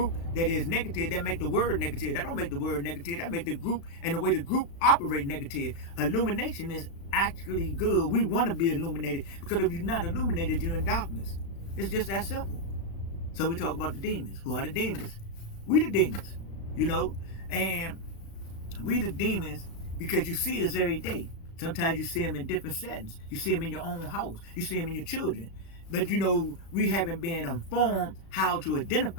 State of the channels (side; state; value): right; late; 36 ms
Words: that is negative, that make the word negative. That don't make the word negative. That make the group and the way the group operate negative. Illumination is actually good. We want to be illuminated, because if you're not illuminated, you're in darkness. It's just that simple. So we talk about the demons. Who are the demons? We the demons, you know, and we the demons because you see us every day. Sometimes you see them in different settings. You see them in your own house. You see them in your children. But you know, we haven't been informed how to